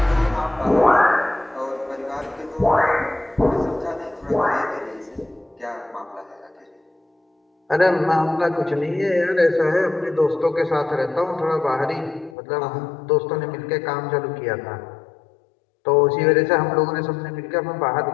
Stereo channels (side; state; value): right; drops out; at 12.4 s